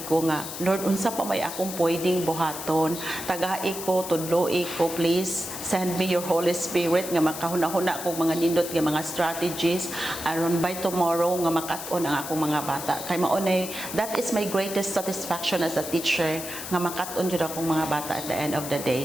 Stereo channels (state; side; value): noise; left; hiss, 8 dB below the sound